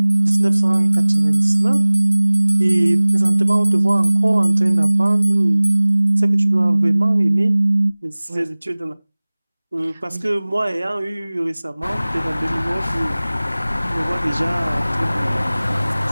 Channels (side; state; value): both; inverted; correlation -0.99